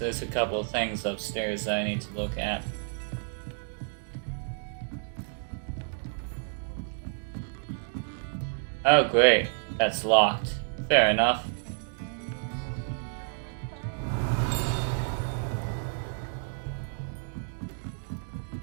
a couple of things upstairs that I need to look at. Oh great, that's locked. Fair enough.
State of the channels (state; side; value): silent; left; digital silence